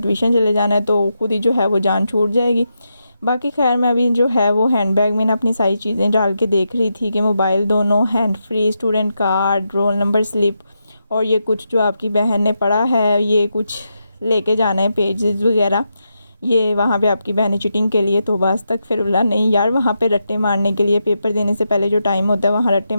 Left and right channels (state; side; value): inverted; both; correlation -0.85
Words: चले जाना है, तो खुद ही जो है वो जान छूट जाएगी। बाकी खैर मैं अभी जो है वो हैंड बैग में ना अपनी सारी चीज़ें डाल के देख रही थी कि मोबाइल दोनों, hand free, student card, roll number slip और ये कुछ जो आपकी बहन ने पढ़ा है ये कुछ लेके जाना है पेजेस वगैरह। ये वहाँ पे आपकी बहन चीटिंग के लिए तो बस तक फिर बोला नहीं यार वहाँ पे रट्टे मारने के लिए पेपर देने से पहले जो टाइम होता है वहाँ रट्टे